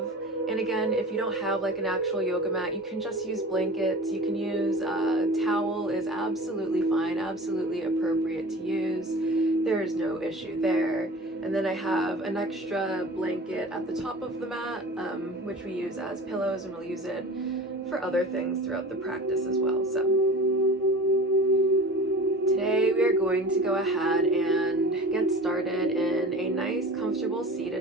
And again, if you don't have like an actual yoga mat, you can just use blankets. You can use a towel, is absolutely fine, absolutely appropriate to use. There is no issue there. And then I have an extra blanket at the top of the mat, which we use as pillows, and we'll use it for other things throughout the practice as well. So today we are going to go ahead and get started in a nice, comfortable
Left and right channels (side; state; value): both; normal; correlation 0.37